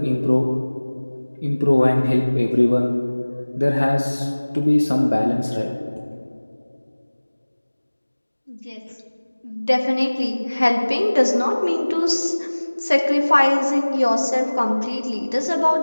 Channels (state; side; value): inverted; both; correlation -1.00